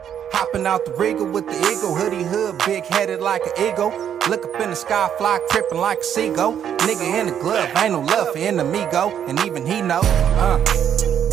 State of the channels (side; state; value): left; quieter; 9.1 dB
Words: Hopping out the Regal with the eagle, hoodie hood, big headed like an eagle. Look up in the sky, fly tripping like a seagull. Nigga in the glove, ain't no love for enemigo, and even he know.